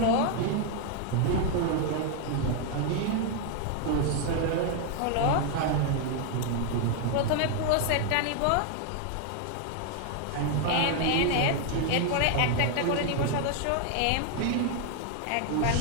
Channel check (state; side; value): different; both; correlation 0.00